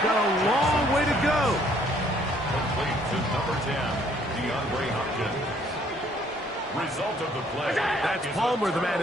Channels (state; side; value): normal; both; correlation 0.63